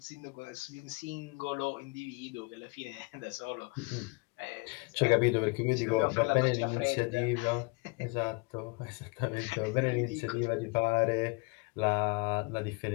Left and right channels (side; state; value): right; quieter; 28.7 dB